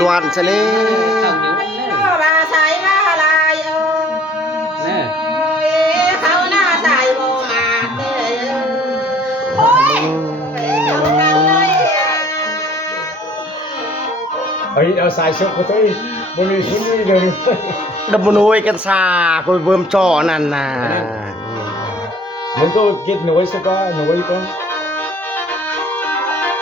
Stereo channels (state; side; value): normal; both; correlation 0.54